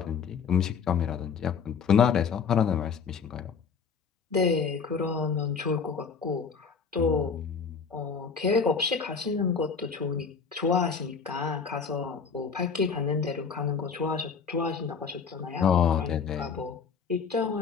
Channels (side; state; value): right; quieter; 5.9 dB